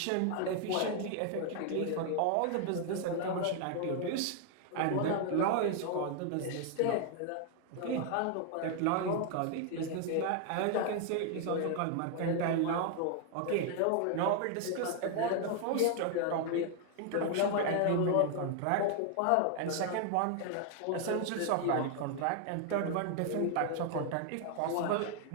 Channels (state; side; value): different; both; correlation 0.00